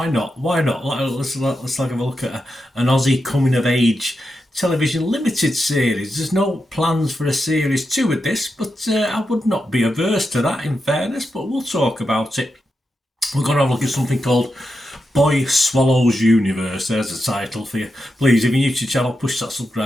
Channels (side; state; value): both; normal; correlation 0.87